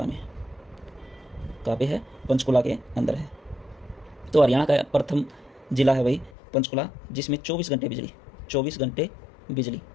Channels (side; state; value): right; drops out; at 6.3 s